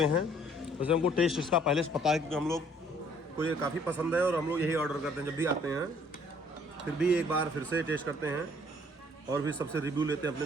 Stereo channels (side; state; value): both; normal; correlation 0.60